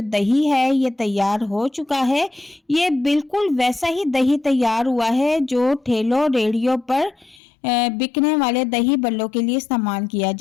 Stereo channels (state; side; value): drops out; right; at 7.4 s